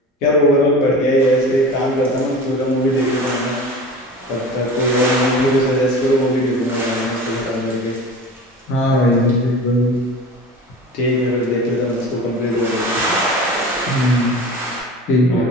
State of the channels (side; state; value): both; normal; correlation 0.36